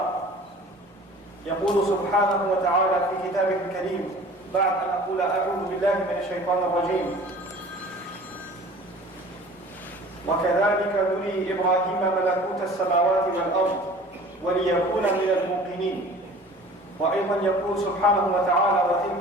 يقول سبحانه وتعالى في كتابه الكريم بعد أن أقول أعوذ بالله من الشيطان الرجيم: وكذلك نري إبراهيم ملكوت السماوات والأرض وليكون من الموقنين. وأيضا يقول سبحانه وتعالى:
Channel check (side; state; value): both; normal; correlation 0.45